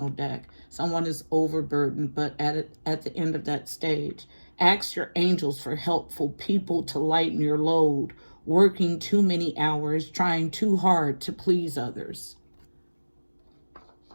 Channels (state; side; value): inverted; both; correlation -1.00